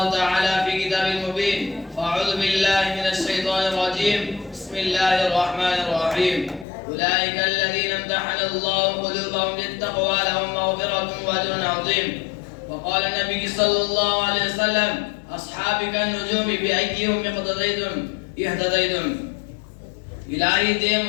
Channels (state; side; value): drops out; right; at 6.7 s